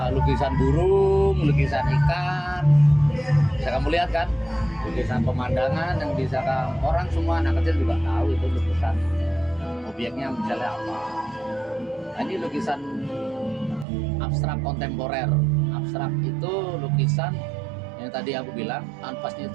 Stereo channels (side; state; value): left; drops out; at 13.9 s